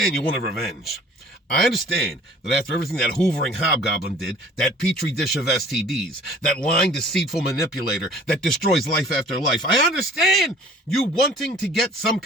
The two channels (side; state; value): both; normal; correlation 0.50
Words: you wanted revenge. I understand that after everything that hoovering hobgoblin did, that petri dish of STDs, that lying, deceitful manipulator that destroys life after life, I understand you wanting to get some